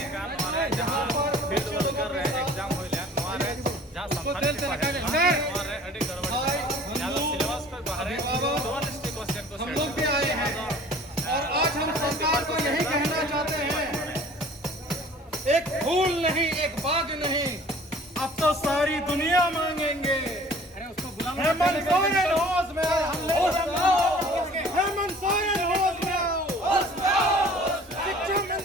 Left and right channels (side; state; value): both; normal; correlation 0.49